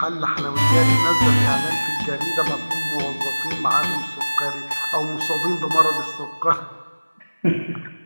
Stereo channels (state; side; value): inverted; both; correlation -1.00